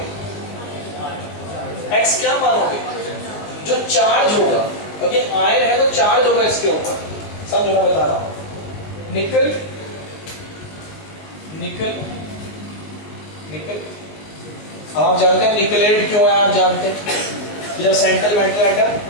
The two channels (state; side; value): late; right; 19 ms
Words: x क्या मानोगे? जो चार्ज होगा, क्योंकि आयन है तो चार्ज होगा इसके ऊपर, सब जो मैं बता रहा हूं। निकल निकल निकल, आप जानते हैं निकलेट क्यों है? आप जानते हैं जब सेंट्रल मेटल एटम